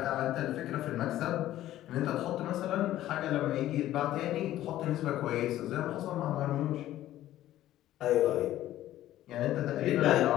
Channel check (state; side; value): quieter; right; 13.8 dB